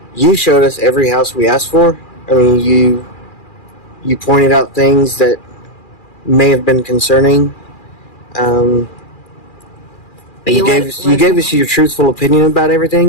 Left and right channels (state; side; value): late; right; 2.4 ms